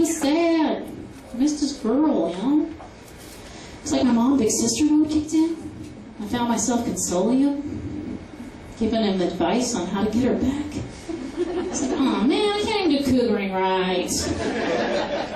sad. I missed this girl, you know? It's like my mom, big sister mode kicked in. I found myself consoling him, giving him advice on how to get her back. It's like, oh man, I can't even do cougering right.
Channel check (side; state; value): both; identical; correlation 1.00